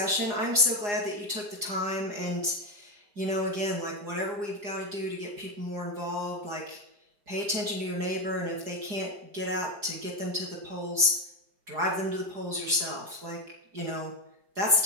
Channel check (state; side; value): late; left; 4.9 ms